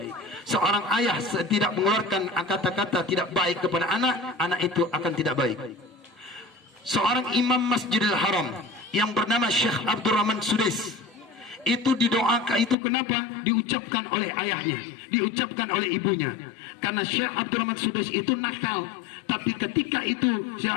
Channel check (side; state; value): right; drops out; at 12.8 s